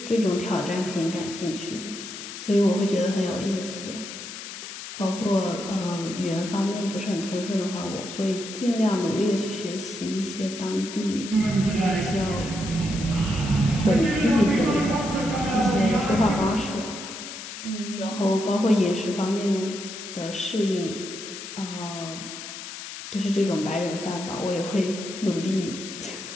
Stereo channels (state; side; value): noise; left; hiss, 10 dB below the sound